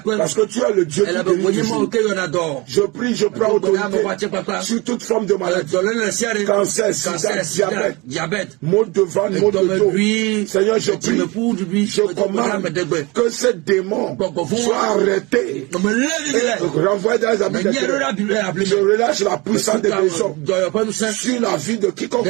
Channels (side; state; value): left; quieter; 24.9 dB